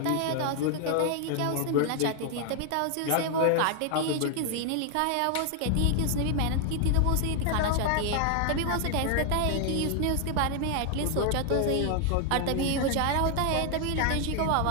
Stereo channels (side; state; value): both; different; correlation 0.00